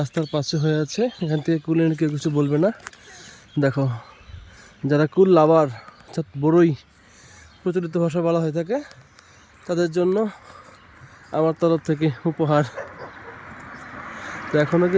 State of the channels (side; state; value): both; identical; correlation 1.00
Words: পাশে হয়ে আছে। এখান থেকে কুল এনে কেউ কিছু বলবে না। দেখো, যারা কুল লাভার, অর্থাৎ বড়ই প্রচলিত ভাষা বলা হয়ে থাকে, তাদের জন্য আমার তরফ থেকে উপহার। তো এখনও